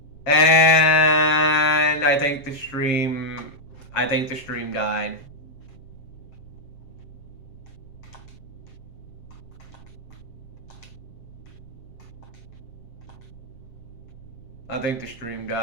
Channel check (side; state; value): right; late; 7.5 ms